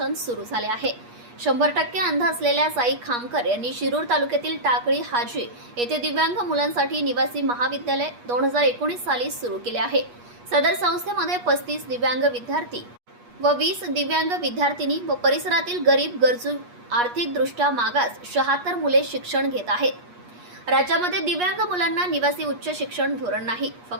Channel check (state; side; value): late; left; 8.4 ms